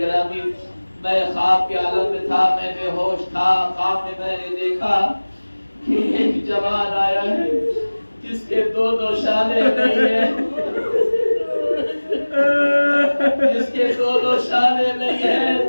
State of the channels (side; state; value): both; inverted; correlation -1.00